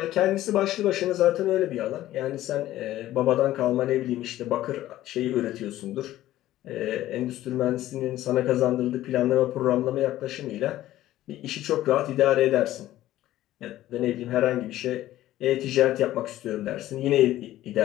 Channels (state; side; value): quieter; right; 14.5 dB